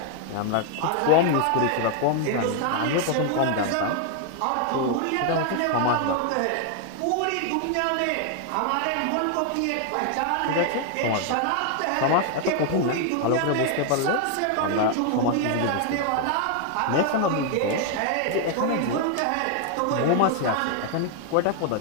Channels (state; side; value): different; both; correlation 0.00